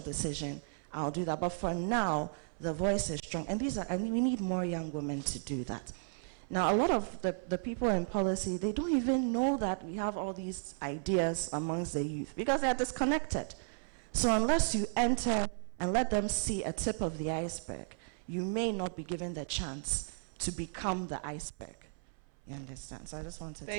decision, I'll do that. But for now, the voice is strong. And we need more young women to do that. Now, a lot of the people in policy, they don't even know that we have all these ideas amongst the youth because they are disconnected. So unless you enter and let them see a tip of the iceberg, you may not be given the chance to become the iceberg. You understand? So I just wanted to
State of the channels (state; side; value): silent; left; 55 dB below the other